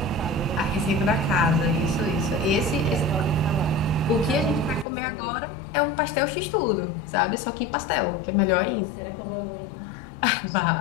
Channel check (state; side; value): drops out; right; at 4.9 s